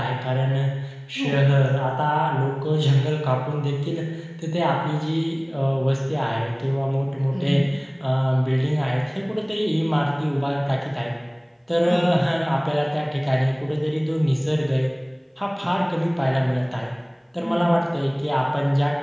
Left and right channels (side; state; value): both; identical; correlation 1.00